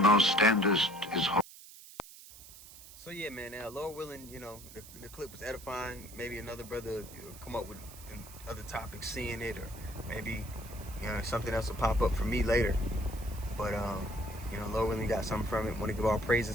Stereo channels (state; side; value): noise; right; hiss, 17 dB below the sound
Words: thou standest is holy. So yeah, man, now Lord willing, you know, the clip was edifying. Maybe another brother come up with other topics, seeing it, or maybe, you know, something else will pop up for me later. But you know, Lord willing, got something from it. Want to give all